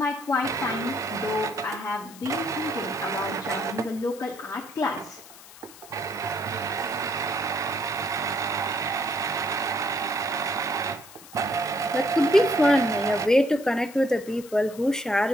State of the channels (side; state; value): left; noise; hiss, 19 dB below the sound